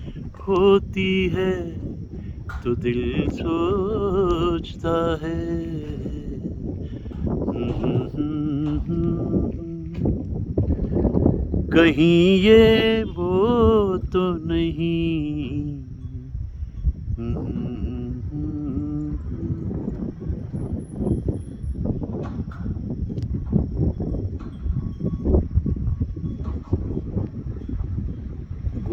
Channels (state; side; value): identical; both; correlation 1.00